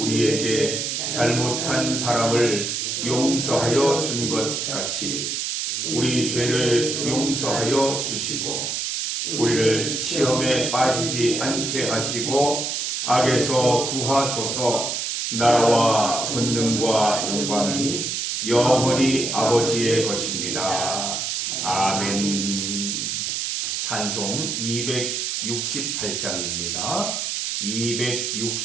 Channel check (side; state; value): right; noise; hiss, 2 dB below the sound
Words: 잘못한 사람을 용서하여 준 것 같이 우리 죄를 용서하여 주시고 우리를 시험에 빠지지 않게 하시고 악에서 구하소서. 나라와 권능과 영광이 영원히 아버지의 것입니다. 아멘. 찬송 268장입니다.